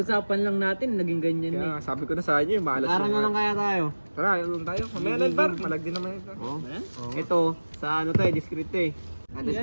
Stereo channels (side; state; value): both; inverted; correlation -1.00